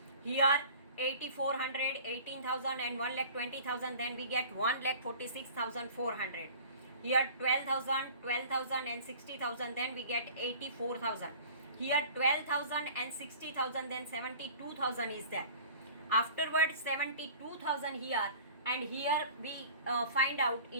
Here 8,400, 18,000 and 1,20,000. Then we get 1,46,400. Here 12,000, 12,000 and 60,000. Then we get 84,000. Here 12,000 and 60,000. Then 72,000 is there. Afterwards 72,000 here. And here we find out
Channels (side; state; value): both; inverted; correlation -0.44